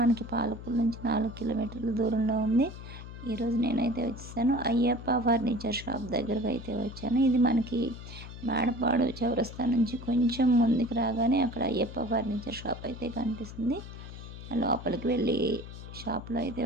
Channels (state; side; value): noise; left; hum, 12 dB below the sound